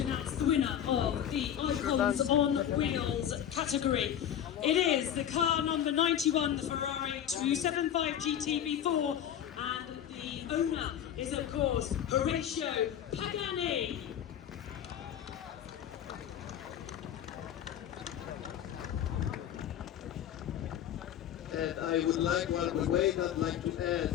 announce the winner of the Icons on Wheels category. It is the car number 91, the Ferrari 275 GT V4, and the owner is of course Horatio Pagani. And I would like, while we wait, I'd like to add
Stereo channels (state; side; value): quieter; right; 10.0 dB